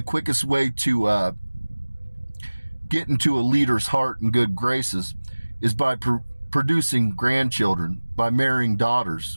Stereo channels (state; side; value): inverted; both; correlation -1.00